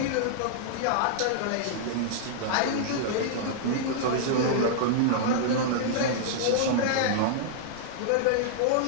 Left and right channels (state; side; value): different; both; correlation -0.01